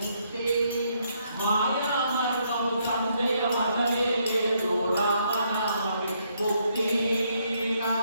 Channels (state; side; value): inverted; both; correlation -0.73